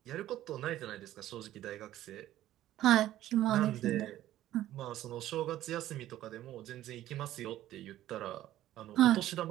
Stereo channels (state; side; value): quieter; left; 13.7 dB